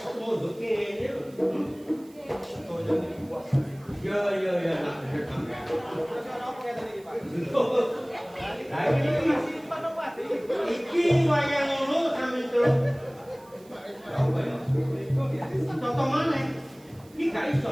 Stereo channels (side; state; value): right; noise; hiss, 27 dB below the sound